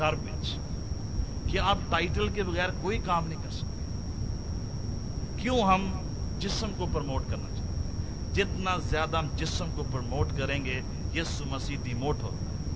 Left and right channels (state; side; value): identical; both; correlation 1.00